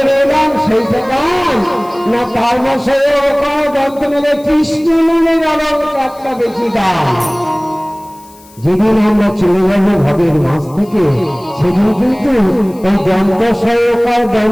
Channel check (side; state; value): left; noise; hiss, 26 dB below the sound